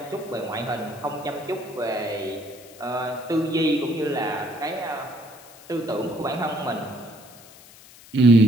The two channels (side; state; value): left; noise; hiss, 21 dB below the sound